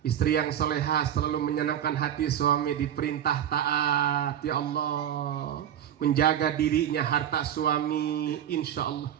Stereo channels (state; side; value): quieter; left; 10.2 dB